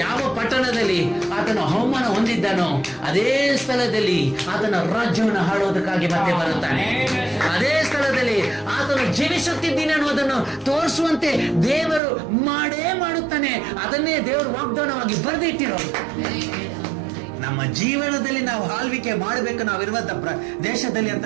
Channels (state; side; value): drops out; left; at 12.0 s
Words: ಯಾವ ಪಟ್ಟಣದಲ್ಲಿ ಆತನ ಅವಮಾನ ಹೊಂದಿದ್ದಾನೋ ಅದೇ ಸ್ಥಳದಲ್ಲಿ ಆತನ ರಾಜ್ಯವನ್ನು ಆಳೋದಕ್ಕಾಗಿ ಮತ್ತೆ ಬರುತ್ತಾನೆ. ಅದೇ ಸ್ಥಳದಲ್ಲಿ ಆತನು ಜೀವಿಸುತ್ತಿದ್ದೀನಿ ಅನ್ನೋದನ್ನು ತೋರಿಸುವಂತೆ ದೇವರು ಮಾಡೇ ಮಾಡುತ್ತಾನೆ. ಅದನ್ನೇ ದೇವರು ವಾಗ್ದಾನವಾಗಿ ಬರೆದಿಟ್ಟಿರೋದು. ನಮ್ಮ ಜೀವನದಲ್ಲಿ ನಾವು ಆಳ್ವಿಕೆ ಮಾಡಬೇಕು. ನಾವಿರುವಂತ ದೇಶದಲ್ಲಿ ಅಂತ